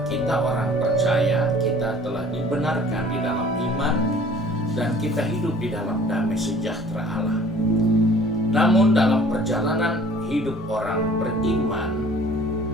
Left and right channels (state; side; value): normal; both; correlation 0.51